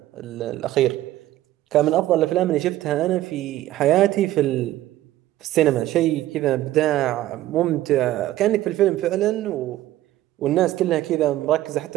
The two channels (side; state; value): left; quieter; 14.7 dB